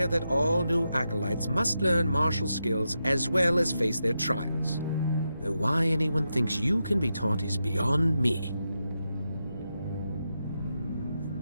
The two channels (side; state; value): both; inverted; correlation -0.87